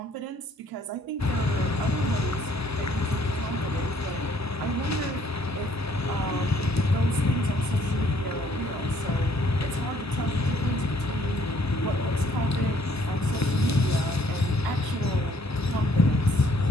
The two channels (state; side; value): normal; both; correlation 0.63